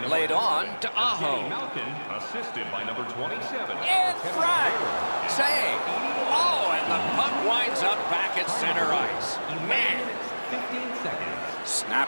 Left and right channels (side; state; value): both; inverted; correlation -1.00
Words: Laid on to Evgeny Aho. Malkin, assisted by number 27. In front. Save. Oh, and the puck winds up back at center ice. Man. 15 seconds.